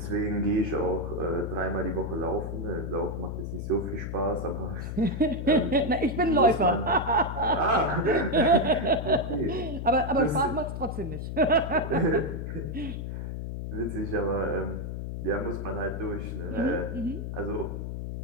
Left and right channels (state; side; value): noise; left; hum, 5 dB below the sound